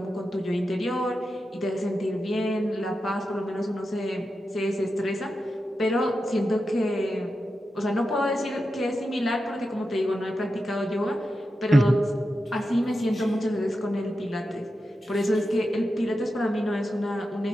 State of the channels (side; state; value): both; normal; correlation 0.90